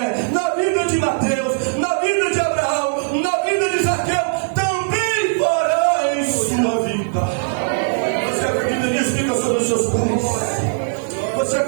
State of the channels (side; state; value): left; silent; digital silence